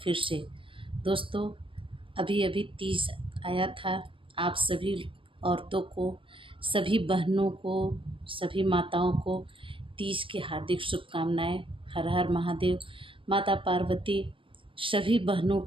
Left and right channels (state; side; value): late; left; 0.25 ms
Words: फिर से। दोस्तों, अभी अभी तीज आया था। आप सभी औरतों को, सभी बहनों को, सभी माताओं को तीज की हार्दिक शुभकामनाएं। हर हर महादेव। माता पार्वती सभी बहनों